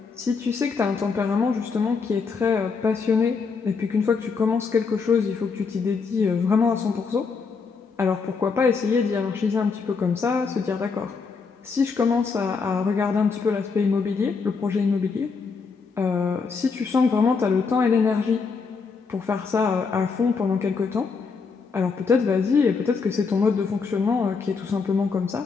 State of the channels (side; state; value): right; quieter; 5.0 dB